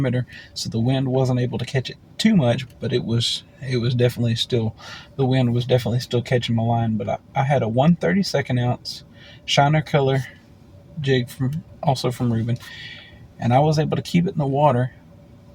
so the wind wasn't able to catch it too much, but it was definitely still, the wind was definitely still catching my line. But I had a 1/32 ounce shiner color jig from Reuben, and I was able to keep it in the water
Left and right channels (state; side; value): identical; both; correlation 1.00